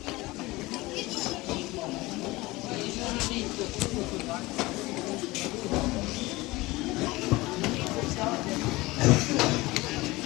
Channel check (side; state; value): right; quieter; 20.9 dB